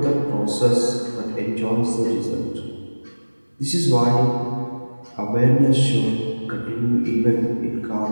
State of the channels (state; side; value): inverted; both; correlation -1.00